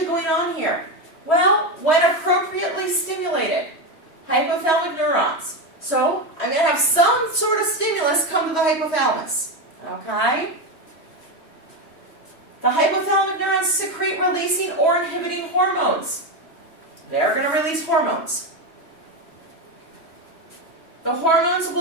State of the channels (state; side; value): late; right; 3.1 ms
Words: going on here. Well, when appropriately stimulated, hypothalamic neurons. So I'm going to have some sort of stimulus come to the hypothalamus, okay? The hypothalamic neurons secrete releasing or inhibiting hormones. They're going to release hormones. The hormones